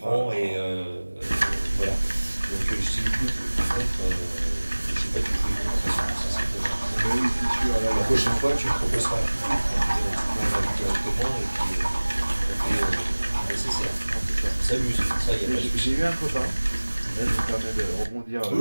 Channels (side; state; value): both; inverted; correlation -1.00